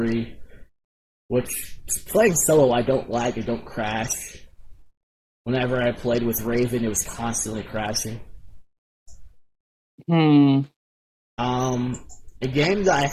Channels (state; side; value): identical; both; correlation 1.00